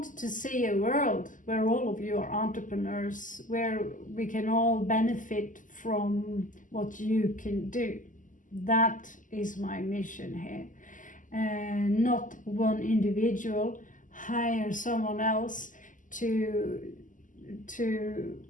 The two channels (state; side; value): late; right; 0.38 ms